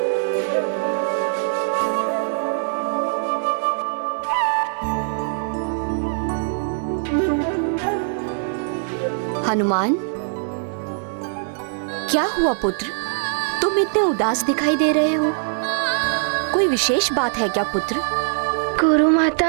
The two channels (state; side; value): silent; left; 64 dB below the other